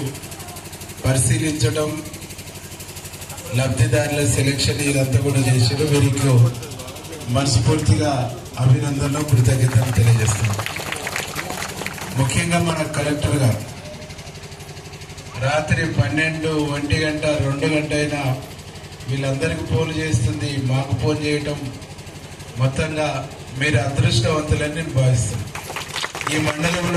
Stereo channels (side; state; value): both; identical; correlation 1.00